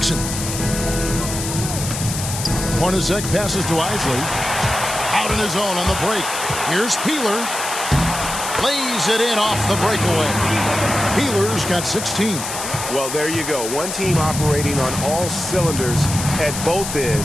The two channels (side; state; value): left; noise; hiss, 6 dB below the sound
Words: Hornacek passes to Isley. Out on his own on the break. Here's Peeler. Lays it in off the breakaway. Peeler's got 16. Well, there you go. One team operating on all cylinders at both